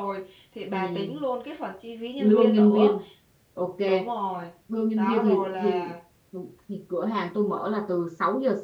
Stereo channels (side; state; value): both; identical; correlation 1.00